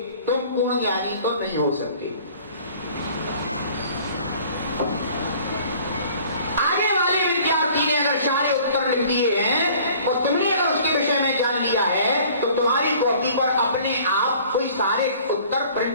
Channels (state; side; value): inverted; both; correlation -0.51